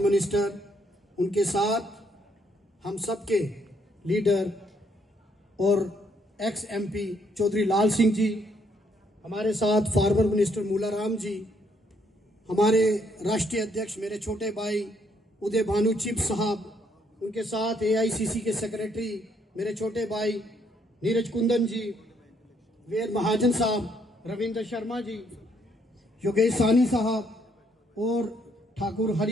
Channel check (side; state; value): both; normal; correlation 0.71